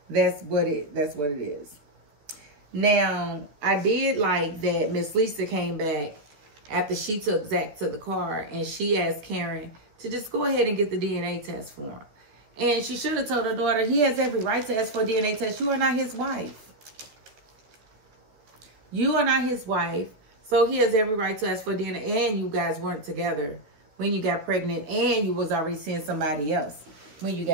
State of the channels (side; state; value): left; late; 13 ms